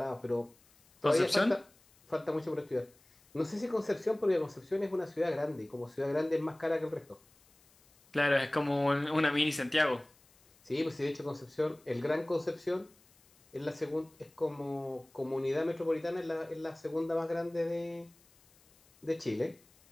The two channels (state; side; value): noise; left; hiss, 30 dB below the sound